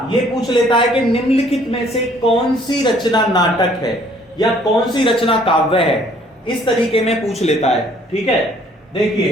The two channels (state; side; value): normal; both; correlation 0.60